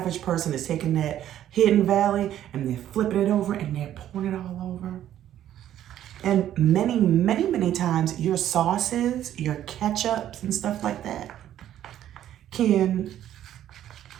person is taking that Hidden Valley and they're flipping it over and they're pouring it all over. And many, many, many times your sauces, your ketchups and stuff like that can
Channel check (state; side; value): quieter; left; 11.6 dB